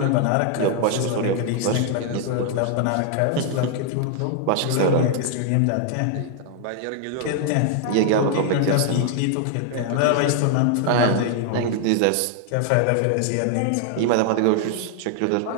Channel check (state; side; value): different; both; correlation 0.00